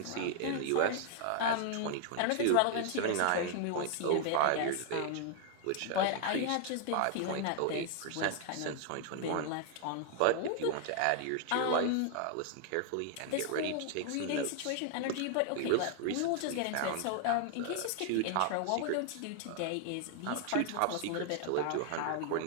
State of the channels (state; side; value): different; both; correlation 0.00